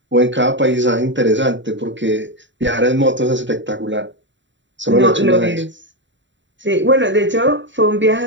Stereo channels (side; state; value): left; late; 0.54 ms